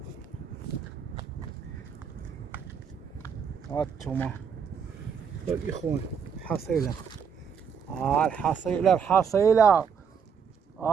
هانتوما الاخوان حصيلة، الحصيلة الحصيلة.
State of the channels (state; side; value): quieter; left; 6.9 dB